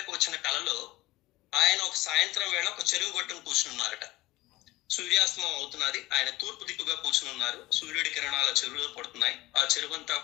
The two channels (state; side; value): quieter; right; 18.6 dB